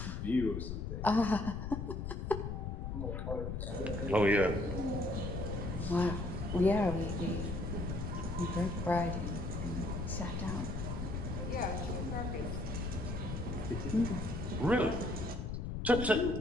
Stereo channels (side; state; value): left; noise; rumble, 4 dB below the sound